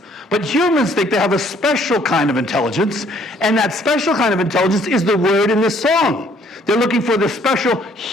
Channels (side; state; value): both; normal; correlation 0.62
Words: But humans think they have a special kind of intelligence, and that special kind of intelligence is the word in this song. They're looking for the special